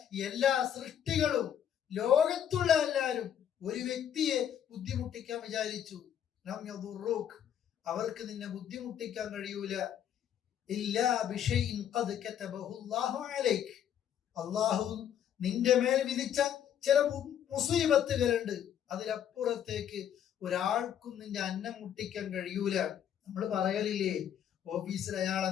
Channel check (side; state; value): right; quieter; 9.5 dB